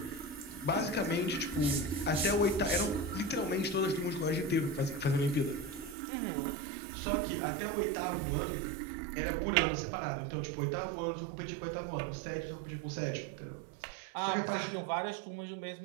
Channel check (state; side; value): drops out; left; at 6.0 s